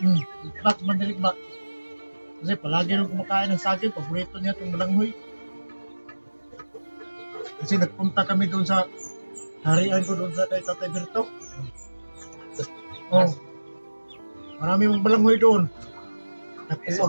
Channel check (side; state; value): both; inverted; correlation -1.00